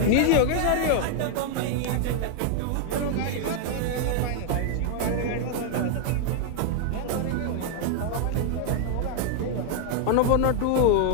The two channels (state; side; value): different; both; correlation 0.00